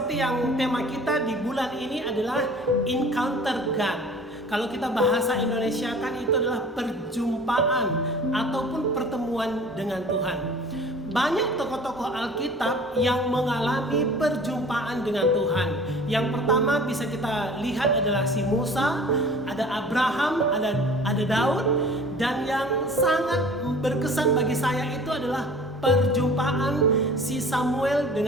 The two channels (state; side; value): normal; both; correlation 0.45